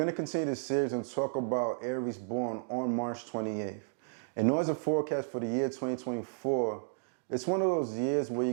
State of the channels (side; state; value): left; silent; digital silence